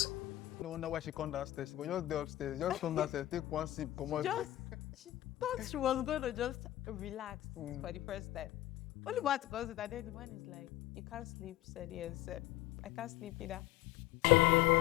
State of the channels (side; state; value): right; quieter; 15.4 dB